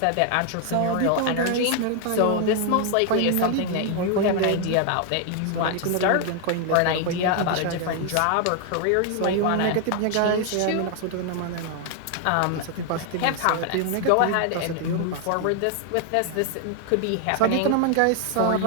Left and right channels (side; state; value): both; different; correlation 0.00